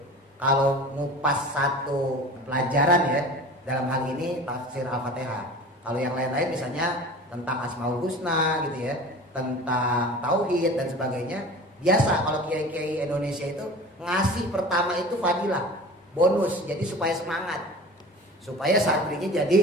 Kalau ngupas satu pelajaran ya, dalam hal ini tafsir Al-Fatihah. Kalau yang lain-lain misalnya tentang Asmaul Husna gitu ya, tentang tauhid dan sebagainya. Biasa kalau kiai-kiai Indonesia itu ngasih pertama itu fadilah, bonus, jadi supaya semangat, supaya santrinya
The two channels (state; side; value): normal; both; correlation 0.38